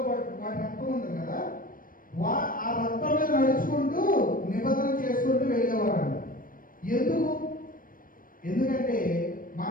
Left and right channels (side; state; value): right; late; 0.40 ms